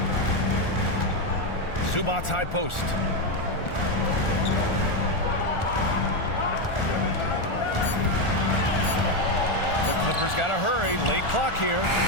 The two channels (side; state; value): right; late; 1.4 ms